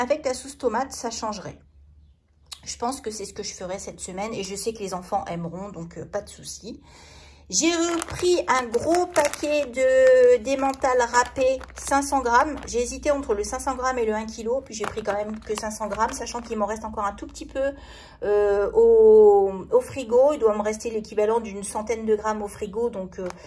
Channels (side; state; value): both; identical; correlation 1.00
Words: la sauce tomate ça changerait. Je pense que c'est ce que je ferai cette semaine et je sais que les enfants aimeront donc pas de souci. J'ai repris un gros paquet d'emmental râpé 500 grammes. J'ai hésité entre le 500 grammes et le 1 kg. Puis j'ai pris quand même que 500 grammes, sachant qu'il m'en reste encore un tout petit peu au frigo. Il doit me rester l'équivalent d'une centaine de grammes au frigo. Donc